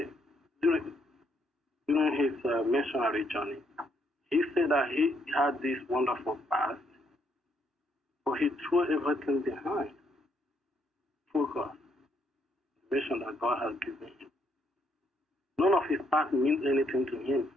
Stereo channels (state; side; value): normal; both; correlation 0.73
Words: during his missionary journey, he said that he had this wonderful past, but he threw everything behind. Focus, the mission that God has given him. None of his past means anything to him.